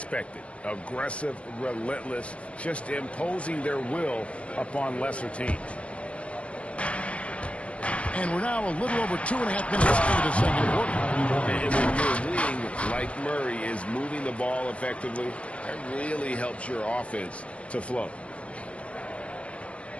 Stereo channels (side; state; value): right; late; 0.062 ms